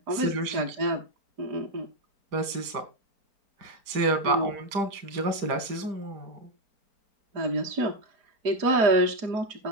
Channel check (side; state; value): left; late; 4.4 ms